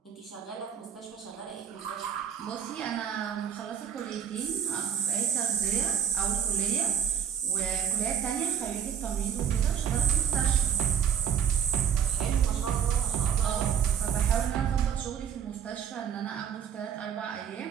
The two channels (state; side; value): quieter; left; 8.4 dB